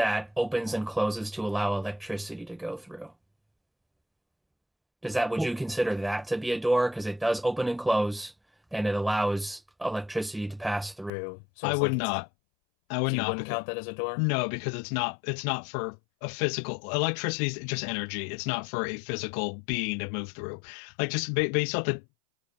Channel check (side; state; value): right; drops out; at 11.1 s